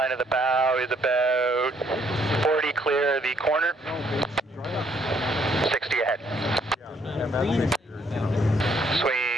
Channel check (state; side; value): normal; both; correlation 0.68